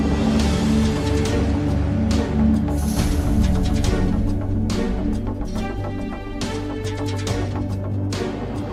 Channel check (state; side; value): identical; both; correlation 1.00